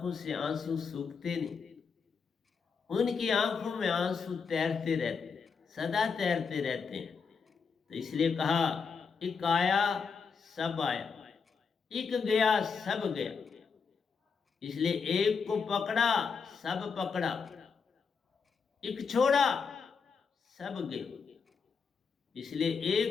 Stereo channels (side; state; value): right; quieter; 5.5 dB